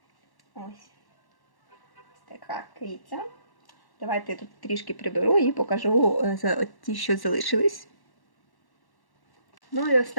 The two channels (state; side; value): late; right; 1.1 ms